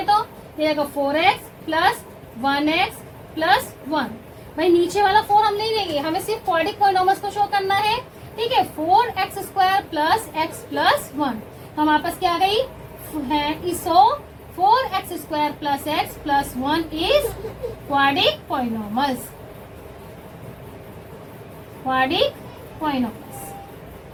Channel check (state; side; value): identical; both; correlation 1.00